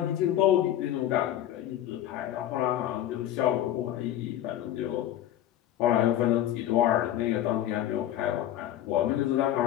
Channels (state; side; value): quieter; right; 12.1 dB